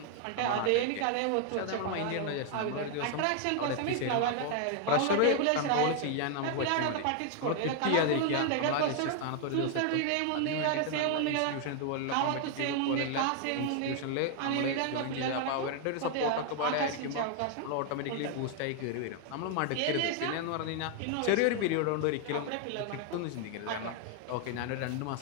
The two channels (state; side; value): different; both; correlation 0.00